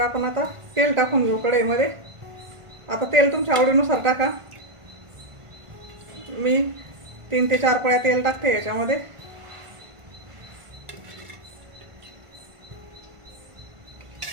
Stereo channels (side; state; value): left; late; 1.5 ms